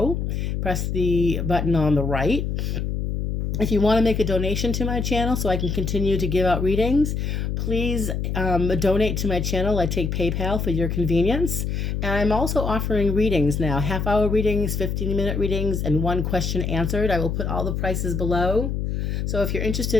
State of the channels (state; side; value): noise; left; hum, 1 dB below the sound